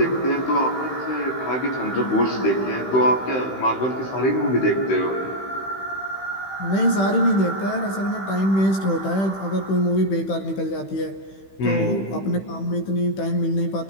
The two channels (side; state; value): right; late; 15 ms